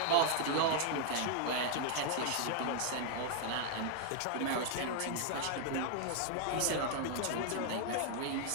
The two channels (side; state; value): both; different; correlation 0.00